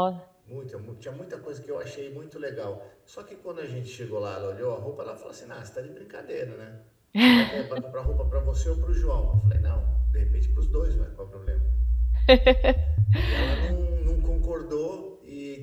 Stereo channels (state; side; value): identical; both; correlation 1.00